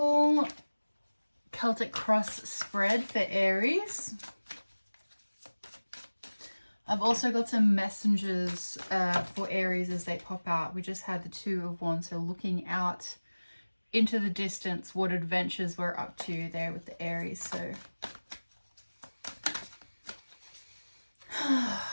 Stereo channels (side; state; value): both; inverted; correlation -1.00